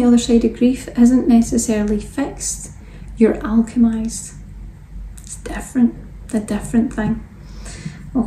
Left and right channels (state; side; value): identical; both; correlation 1.00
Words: other side of grief isn't necessarily fixed, you're alchemized. It's different, a different thing,